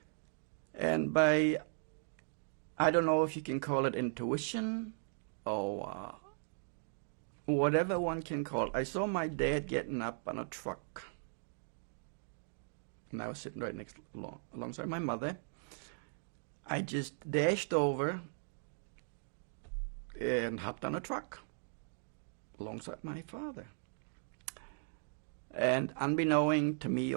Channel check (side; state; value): left; silent; digital silence